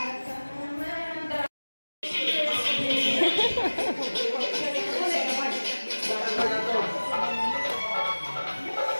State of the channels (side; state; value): both; inverted; correlation -1.00